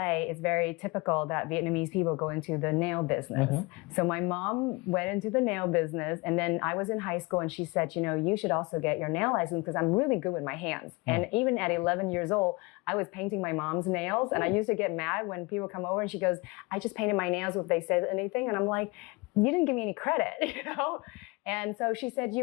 it's very typical that Vietnamese people go into the nail business. So my mom went into the nail business, and then I was in high school, and she said, you should also get your nail license because I'm really good with my hands. And even at 11 years old, I was painting my mom's nails, and I used to get mad when people come over and she goes, I just painted my nails if they said anything. And I'm like, you didn't give me any credit, And so she said,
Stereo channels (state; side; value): quieter; right; 25.6 dB